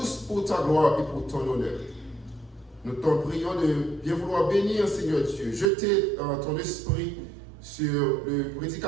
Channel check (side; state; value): left; drops out; at 5.7 s